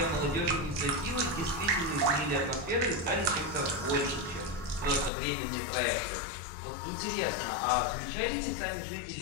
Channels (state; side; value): drops out; right; at 5.1 s